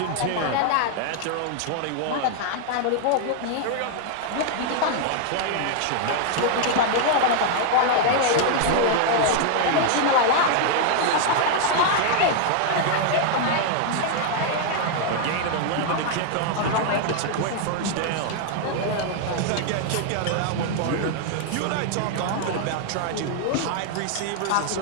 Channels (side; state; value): both; different; correlation 0.00